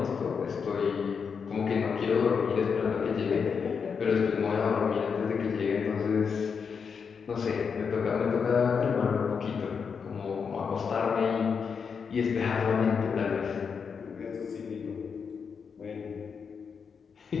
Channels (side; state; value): right; quieter; 6.1 dB